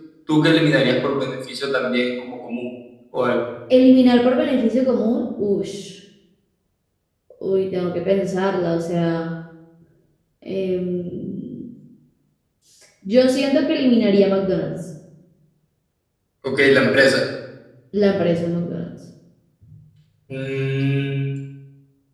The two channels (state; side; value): identical; both; correlation 1.00